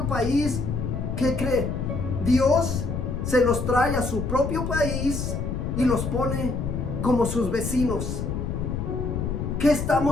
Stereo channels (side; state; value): left; noise; rumble, 3 dB below the sound